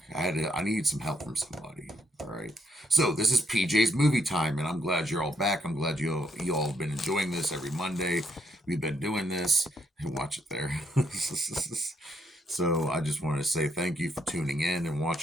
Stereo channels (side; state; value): both; normal; correlation 0.74